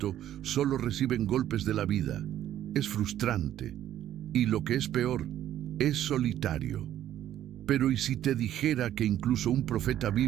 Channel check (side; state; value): left; quieter; 11.9 dB